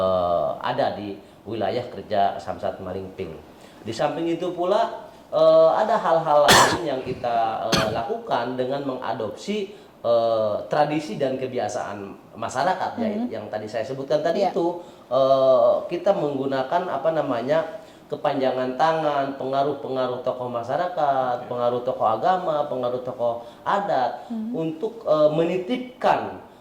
ada di wilayah kerja Samsat Malingping. Di samping itu pula ada hal-hal lain yang kita lakukan dengan mengadopsi tradisi dan kebiasaan masyarakat ya, yang tadi saya sebutkan tadi itu, kita menggunakan kepanjangan tangan, pengaruh-pengaruh tokoh masyarakat, pengaruh tokoh agama, pengaruh tokoh adat untuk menitipkan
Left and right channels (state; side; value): identical; both; correlation 1.00